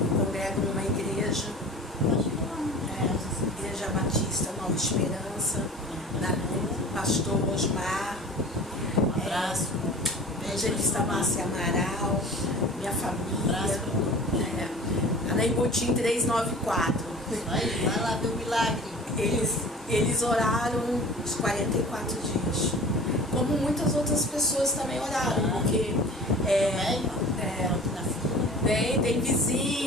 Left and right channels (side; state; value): both; normal; correlation 0.42